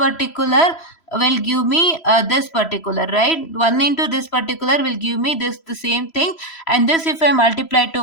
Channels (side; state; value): right; late; 3.0 ms